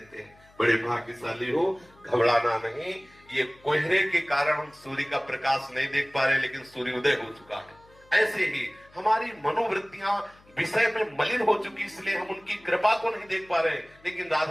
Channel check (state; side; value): noise; left; hum, 28 dB below the sound